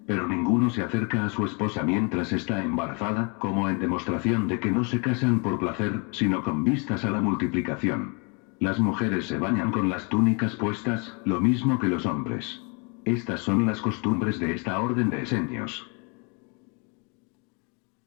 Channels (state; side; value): quieter; right; 34.0 dB